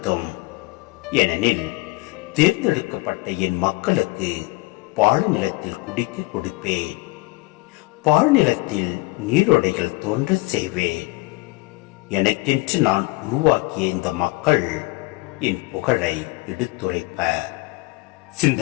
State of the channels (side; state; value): right; quieter; 23.7 dB